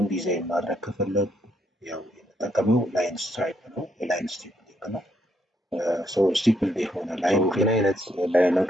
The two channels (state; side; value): normal; both; correlation 0.75